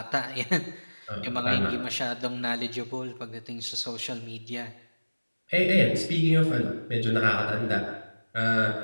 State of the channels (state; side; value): inverted; both; correlation -1.00